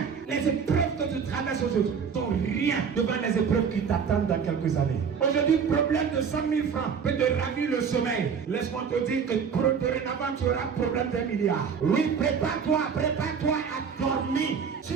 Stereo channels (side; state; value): left; quieter; 6.5 dB